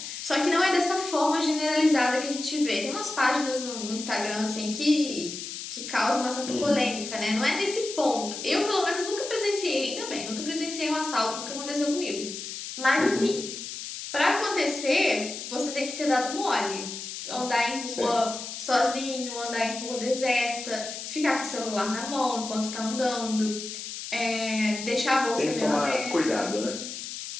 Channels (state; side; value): noise; left; hiss, 8 dB below the sound